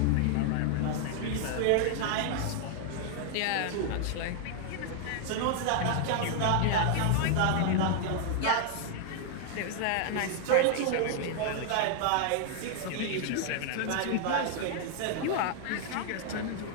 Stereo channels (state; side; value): different; both; correlation 0.00